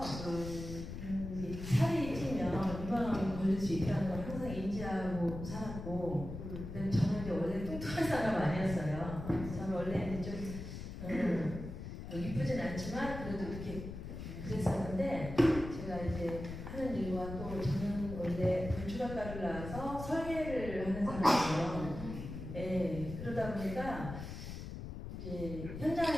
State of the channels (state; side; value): noise; left; rumble, 8 dB below the sound